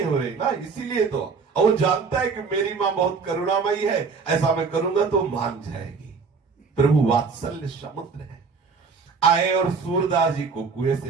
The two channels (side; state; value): left; quieter; 5.1 dB